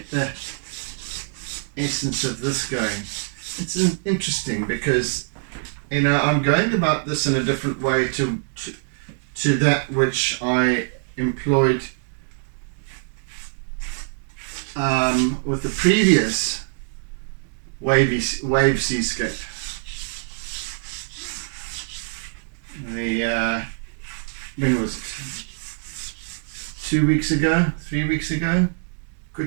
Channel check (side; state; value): left; silent; digital silence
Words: the essence of this going. It's interesting because, I'm going about this in a different way to that which I employed with the previous wave seascape. When was it? 2 weeks ago? 3 weeks ago?